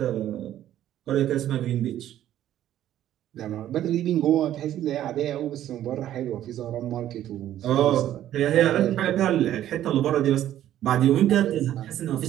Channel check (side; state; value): left; quieter; 12.2 dB